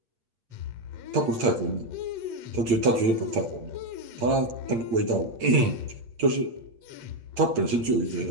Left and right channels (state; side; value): late; left; 8.7 ms